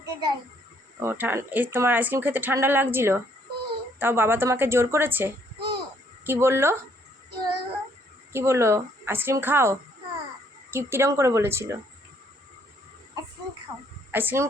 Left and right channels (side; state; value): both; normal; correlation 0.67